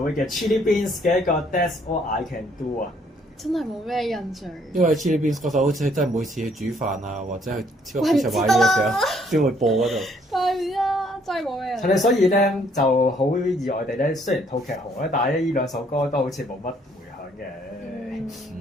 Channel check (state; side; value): normal; both; correlation 0.65